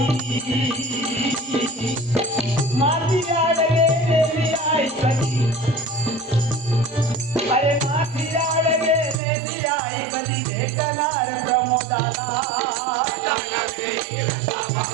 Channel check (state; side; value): drops out; left; at 9.2 s